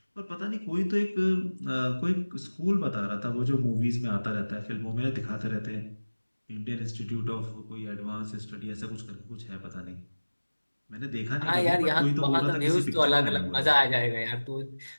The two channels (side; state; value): both; inverted; correlation -1.00